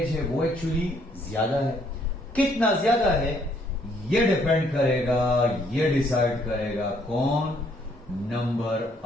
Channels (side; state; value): both; normal; correlation 0.67